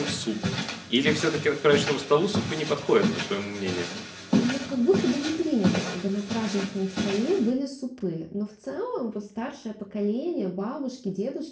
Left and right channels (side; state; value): both; identical; correlation 1.00